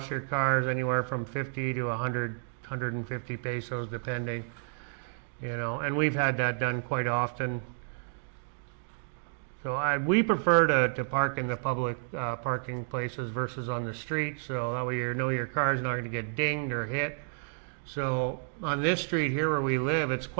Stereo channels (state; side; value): silent; left; digital silence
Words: your cars, anywhere from 50 to 100, 150 pesos, depending. And we've had that done quite often. So we prefer to park in the public parking places versus on the street, so that way your car's not going to get dinged or hit. So on this street here where we live, it's